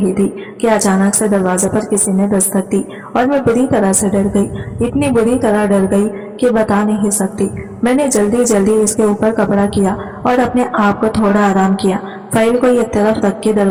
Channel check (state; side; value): identical; both; correlation 1.00